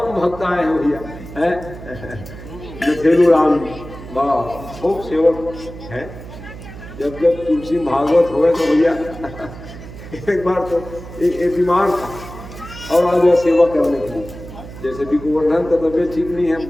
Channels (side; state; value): right; noise; hum, 14 dB below the sound